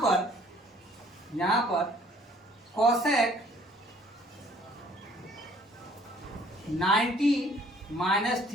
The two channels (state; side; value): normal; both; correlation 0.58